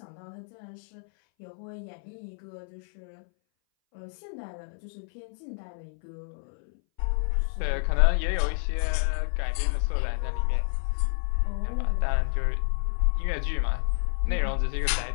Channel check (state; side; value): silent; right; 59 dB below the other